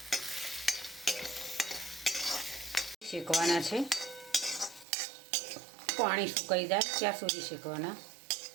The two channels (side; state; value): left; drops out; at 4.9 s